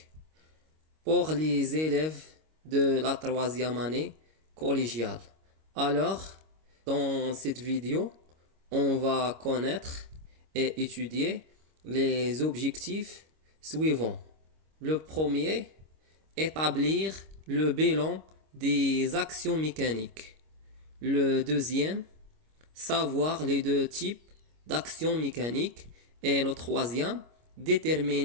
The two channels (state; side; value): late; left; 25 ms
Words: pour les élèves de la troisième année collégiale. Alors, dans cette vidéo, on va connaître et étudier les objectifs suivants. Le premier, établir le bilan des actions mécaniques. Le deuxième, savoir les deux types d'actions mécaniques. Et le troisième,